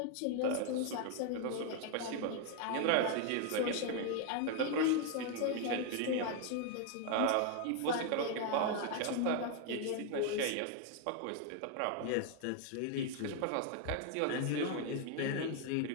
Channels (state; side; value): different; both; correlation 0.00